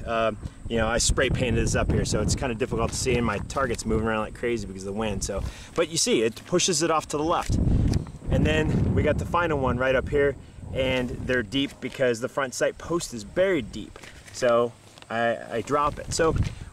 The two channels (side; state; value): both; identical; correlation 1.00